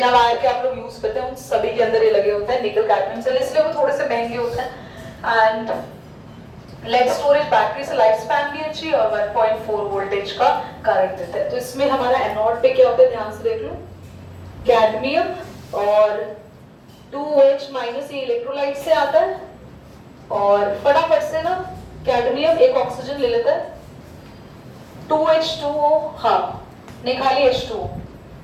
वायर के आप लोग यूज करते हैं, उन सभी के अंदर ये लगे होते हैं निकल कैडमियम सेल, इसलिए वो थोड़े से महंगे होते हैं। एंड लेड स्टोरेज बैटरी से लाइफ स्पैन भी अच्छी और 1.4 वोल्टेज का करंट देता है। तो इसमें हमारा एनोड पे क्या होता है, ध्यान से देख लो, कैडमियम और 2OH माइनस, ये इलेक्ट्रोलाइट से आता है, और फटाफट से ना कैडमियम एक ऑक्सीजन ले लेता है, 2H2O, हाँ निकाली H2O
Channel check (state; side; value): identical; both; correlation 1.00